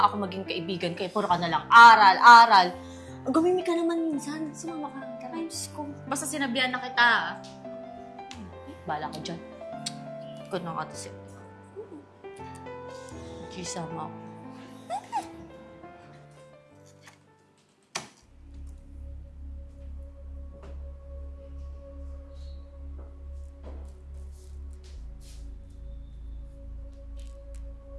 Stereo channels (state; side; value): identical; both; correlation 1.00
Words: ako maging kaibigan kaya puro ka na lang aral, aral. Gumimi ka naman minsan. Sumama ka. Tara. Diyos ko. Basta sinabihan na kita, ha? Bala ka dyan. Ikaw na nga kasi. Gisama ako.